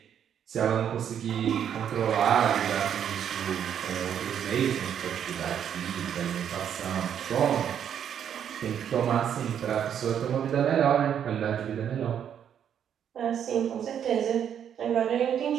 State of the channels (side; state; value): left; quieter; 8.9 dB